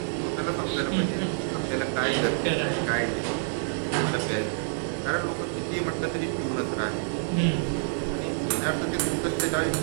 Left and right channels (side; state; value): left; silent; digital silence